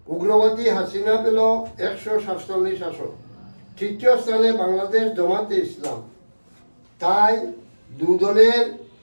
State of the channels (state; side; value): inverted; both; correlation -1.00